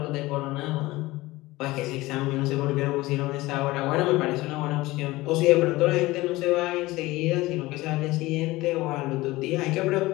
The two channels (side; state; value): right; quieter; 19.4 dB